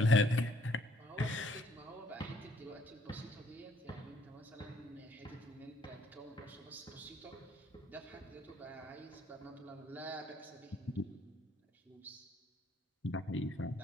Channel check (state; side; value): normal; both; correlation 0.64